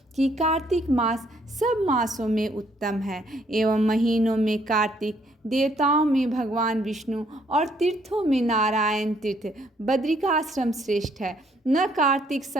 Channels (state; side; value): normal; both; correlation 0.68